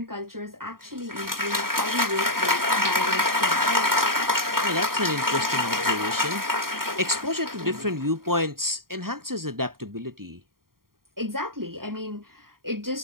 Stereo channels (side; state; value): left; late; 0.92 ms